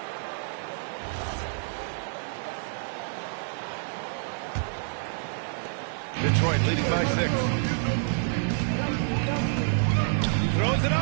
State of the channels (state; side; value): silent; left; digital silence